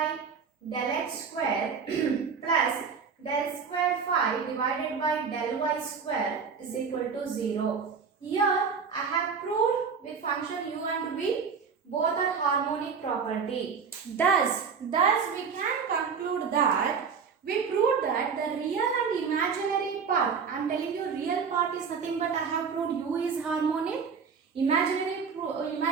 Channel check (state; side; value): quieter; left; 5.9 dB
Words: del X square plus del square phi divided by del Y square is equal to 0. Here I have proved with function u and v both are harmonic property. Thus we can conclude that we proved that the real and imaginary part, I am telling you real part is nothing but I have proved u is harmonic. Imaginary